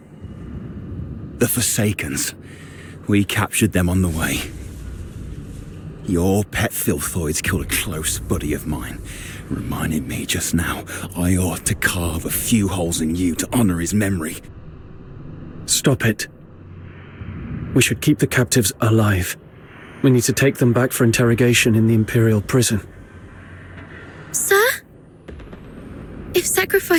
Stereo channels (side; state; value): both; identical; correlation 1.00